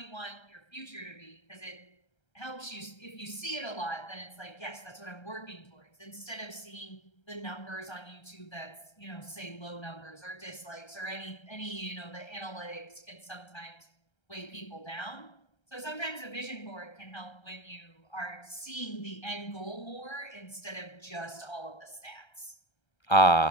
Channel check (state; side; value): late; right; 1.3 ms